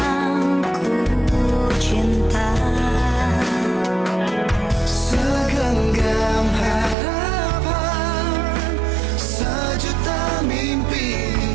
ku cinta. Segenggam harapan, sejuta mimpi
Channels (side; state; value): left; drops out; at 7.0 s